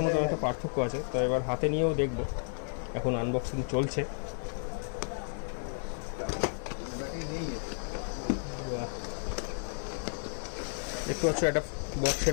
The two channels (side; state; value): right; silent; 56 dB below the other